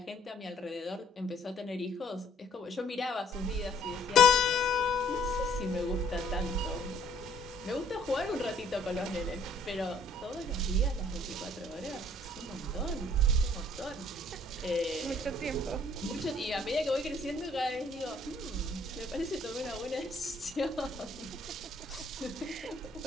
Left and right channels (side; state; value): both; normal; correlation 0.61